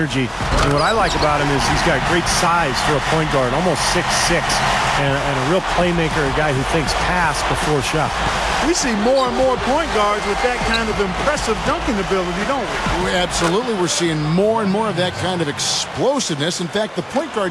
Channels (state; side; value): identical; both; correlation 1.00